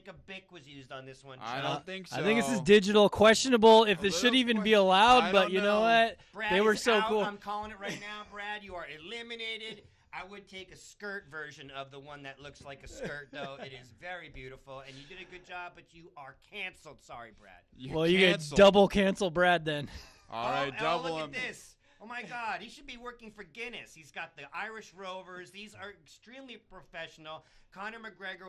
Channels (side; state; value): both; identical; correlation 1.00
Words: a Bic was used on this one. I Chuck. don't think so. I think this is digital, questionable if this should little even be allowed. I But don't you know know. what? Brad They were is so out. cool. I'm calling it right now, Brad. You are eliminated. I would take a skirt version of the one that looks like a skirt, though. It is very beautiful, and you did a good job, but you are canceled. Sorry, Brad. Well, you get canceled. double cancel Brad then. All right, double look him. at this. Oh, my God. He should be working for Guinness. He's got the Irish Rovers. These are extremely professional. Conor McGregor